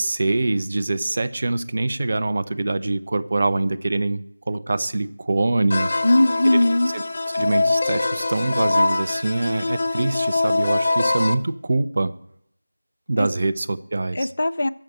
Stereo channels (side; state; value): both; inverted; correlation -0.96